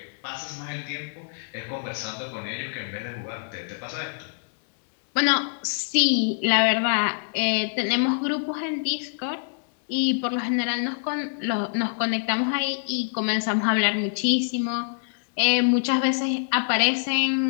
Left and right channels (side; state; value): right; silent; 62 dB below the other